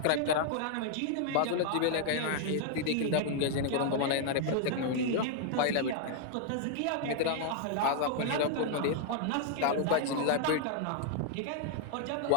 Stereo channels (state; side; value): different; both; correlation -0.01